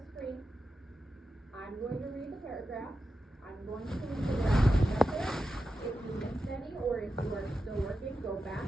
screen. I'm going to read the paragraphs. I'm going to read the graph up there. If you missed any, or if you are still working, go back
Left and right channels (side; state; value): both; normal; correlation 0.90